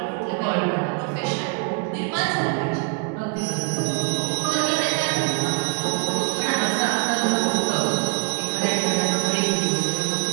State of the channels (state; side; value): quieter; left; 34.0 dB